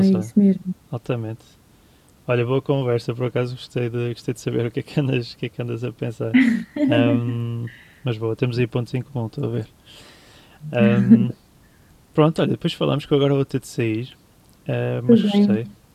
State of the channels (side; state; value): both; identical; correlation 1.00